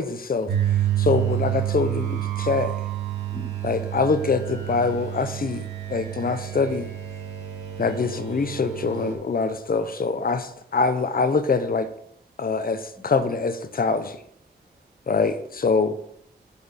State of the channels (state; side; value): normal; both; correlation 0.30